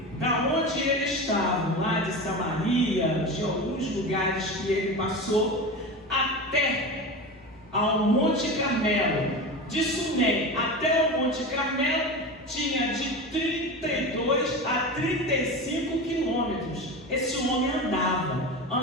da onde ele estava, lá de Samaria, de alguns lugares que ele passou, até ao Monte Carmelo, de Sunem até o Monte Carmelo, tinha de 32 a 35 quilômetros. Esse homem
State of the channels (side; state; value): both; normal; correlation 0.26